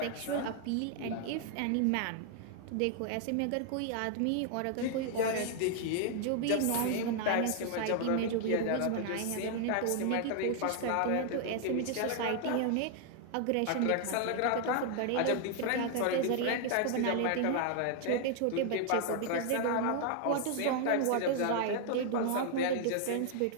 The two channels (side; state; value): both; different; correlation 0.00